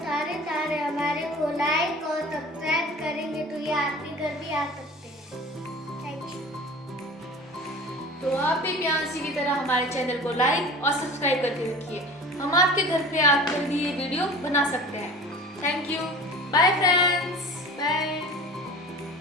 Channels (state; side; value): normal; both; correlation 0.40